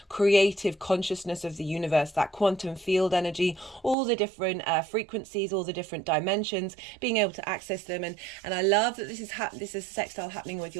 creative consciousness of the universe, that quantum field energy, all the different frequencies, all the different dimensions, being able to access them. And I love that this is sextile happening with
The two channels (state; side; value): drops out; left; at 4.0 s